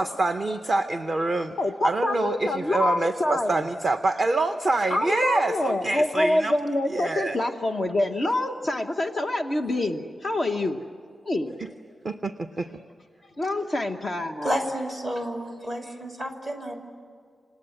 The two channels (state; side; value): normal; both; correlation 0.90